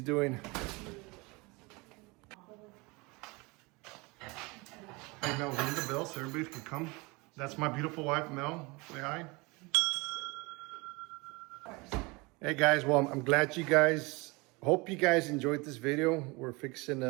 doing. Hey Mel, ring the bell so everybody can come. That's my beautiful wife, Mel. Say hi. Hey guys, well, I'm glad you guys, hope you guys enjoyed this video. We're fixing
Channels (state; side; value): quieter; left; 26.0 dB